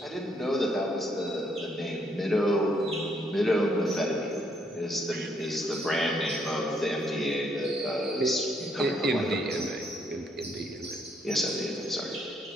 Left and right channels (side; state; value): both; normal; correlation 0.71